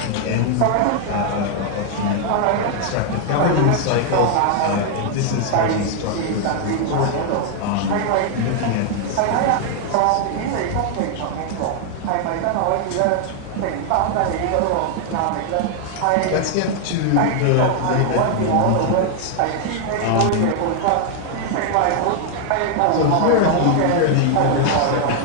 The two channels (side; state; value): both; different; correlation 0.00